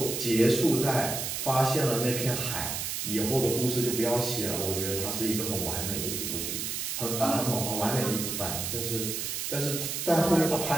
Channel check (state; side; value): noise; right; hiss, 3 dB below the sound